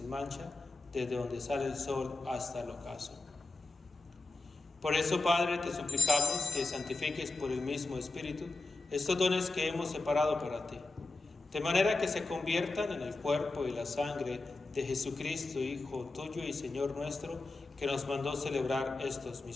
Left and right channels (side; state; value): right; quieter; 3.3 dB